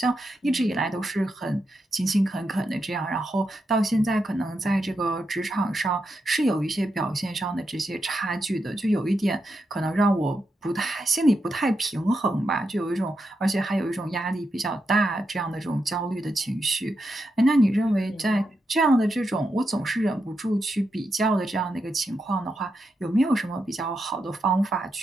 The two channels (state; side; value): normal; both; correlation 0.85